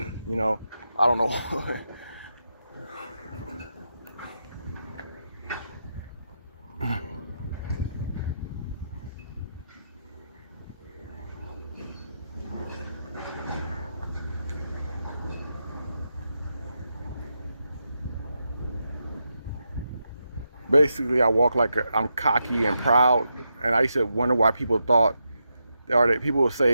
you know. I don't know. Basically, I walk like I'm cocky and proud, and I used to wonder why people thought, or that people would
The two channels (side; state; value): both; inverted; correlation -0.85